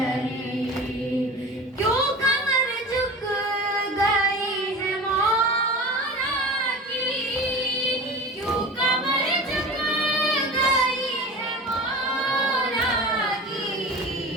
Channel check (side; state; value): both; normal; correlation 0.34